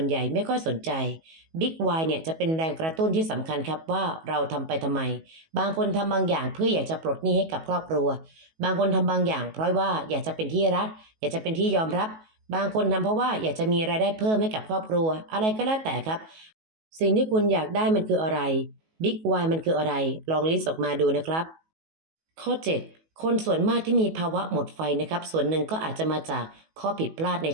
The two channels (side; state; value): left; late; 19 ms